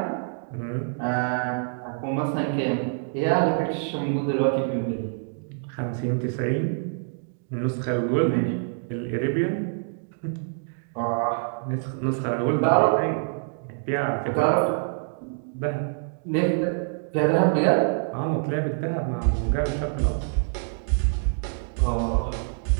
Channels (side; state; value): left; silent; digital silence